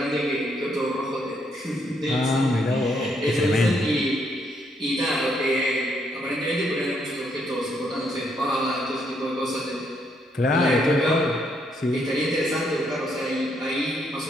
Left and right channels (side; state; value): both; normal; correlation 0.74